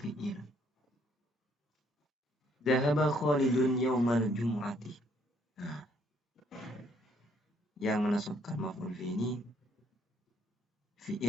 Dhahaba Khalidun yaumal jum'ati. Nah, yang menasabkan maf'ul fi ini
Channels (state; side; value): normal; both; correlation 0.67